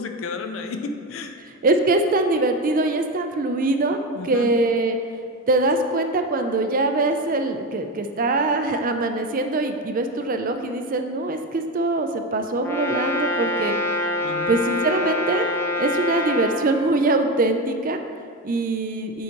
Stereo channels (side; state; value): both; normal; correlation 0.18